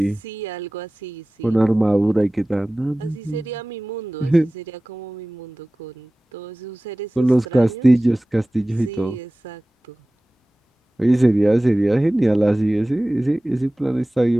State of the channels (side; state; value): both; normal; correlation 0.97